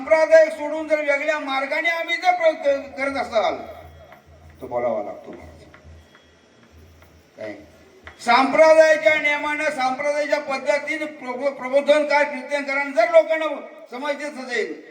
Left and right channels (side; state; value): both; identical; correlation 1.00